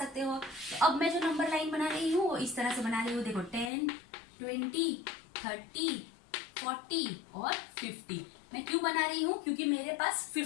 हो। तो अब मैं जो नंबर लाइन बना रही हूँ वो इस तरह से बना रही हूँ, देखो 10, 20, 30, 40 और 50। मैं क्यों बना रही हूँ, क्योंकि मेरे पास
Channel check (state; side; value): drops out; right; at 3.7 s